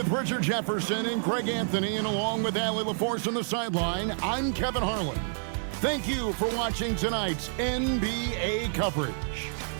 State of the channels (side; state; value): left; silent; digital silence